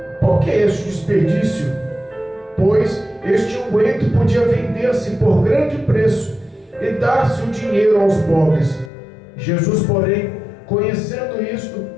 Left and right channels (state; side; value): drops out; right; at 8.9 s